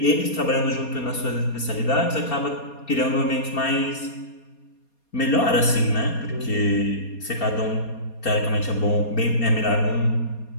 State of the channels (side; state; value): right; late; 4.3 ms